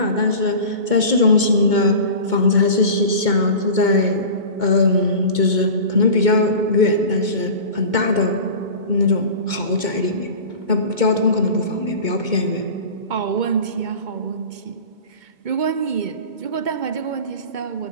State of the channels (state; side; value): late; left; 2.2 ms